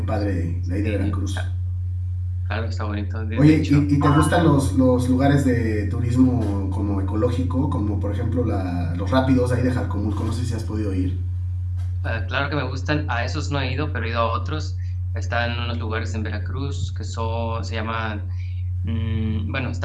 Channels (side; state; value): both; identical; correlation 1.00